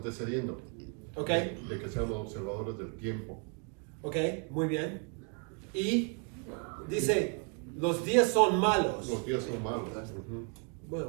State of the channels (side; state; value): left; quieter; 37.5 dB